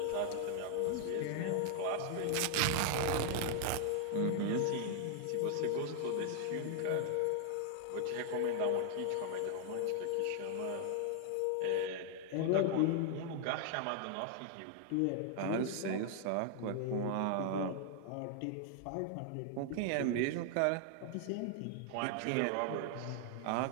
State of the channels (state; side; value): different; both; correlation 0.00